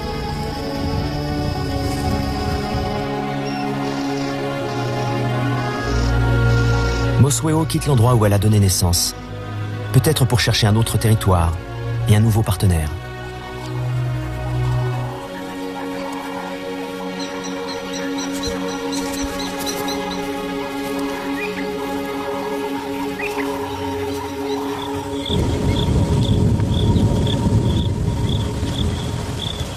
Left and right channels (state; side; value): identical; both; correlation 1.00